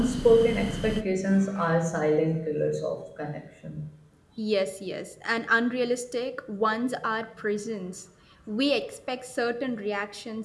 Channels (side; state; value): both; identical; correlation 1.00